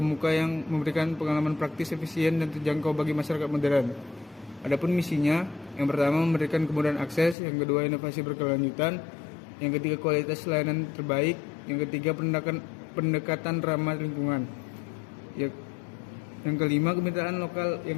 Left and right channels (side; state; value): right; drops out; at 7.4 s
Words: yang memberikan pengalaman praktis, efisien, dan terjangkau bagi masyarakat modern. Adapun misinya, yang pertama memberikan kemudahan akses, yang kedua inovasi berkelanjutan, yang ketiga kualitas layanan terbaik, yang ketiga pendekatan ramah lingkungan, yang kelima kemitraan lokal yang